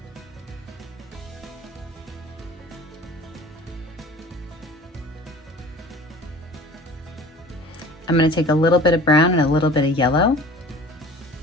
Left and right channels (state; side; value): normal; both; correlation 0.44